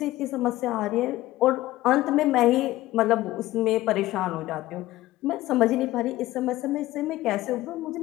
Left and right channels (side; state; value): right; quieter; 16.5 dB